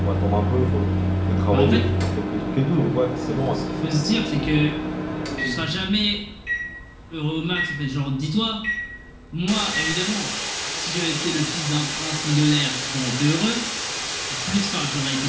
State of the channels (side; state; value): both; identical; correlation 1.00